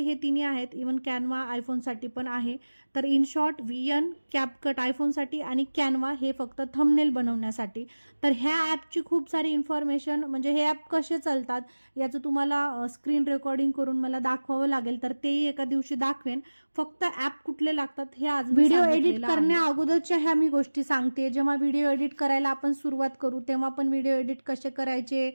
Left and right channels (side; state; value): both; inverted; correlation -1.00